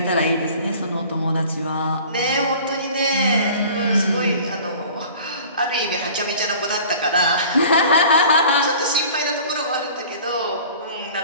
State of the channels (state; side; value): inverted; both; correlation -0.45